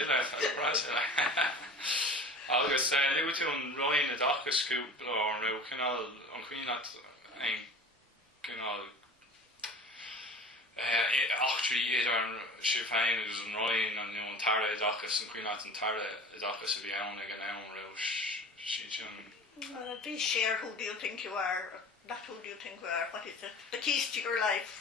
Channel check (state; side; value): normal; both; correlation 0.39